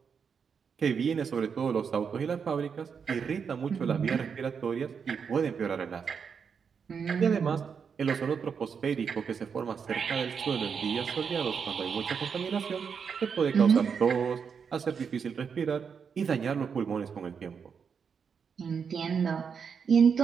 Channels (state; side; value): quieter; left; 6.4 dB